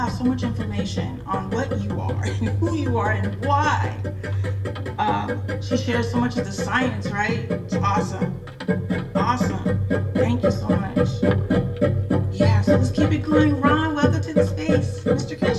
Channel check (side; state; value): both; identical; correlation 1.00